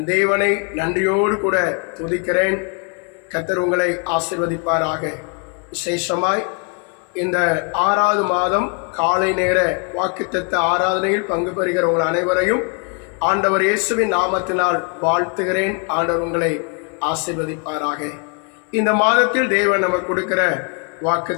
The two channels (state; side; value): quieter; right; 37.8 dB